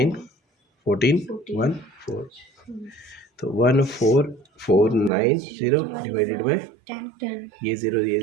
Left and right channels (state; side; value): drops out; left; at 5.1 s